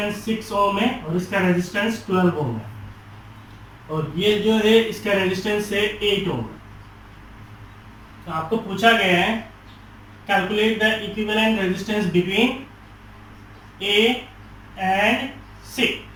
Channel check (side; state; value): both; identical; correlation 1.00